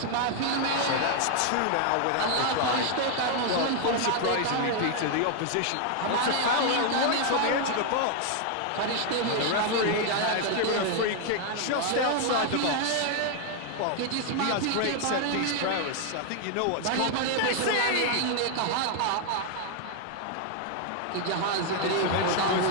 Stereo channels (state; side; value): different; both; correlation 0.00